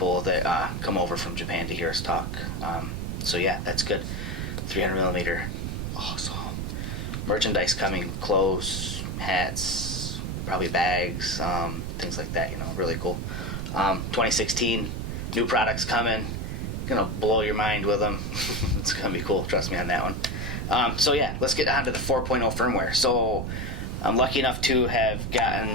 that come over from Japan to hear us talk. So yeah, that's good. 300 millimeter, awesome. Merchandise coming, clothes, hats, probably bags, things like that. Really cool. 2016, new products coming. Gonna blow your mind with them. It's gonna be cool. Trust me on that one. So yeah, let's get on to the 4.0 firmware. So I'm lucky enough to have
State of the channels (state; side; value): noise; right; rumble, 3 dB below the sound